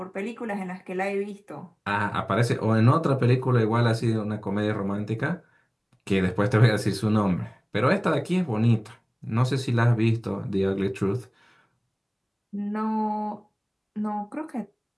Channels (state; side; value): identical; both; correlation 1.00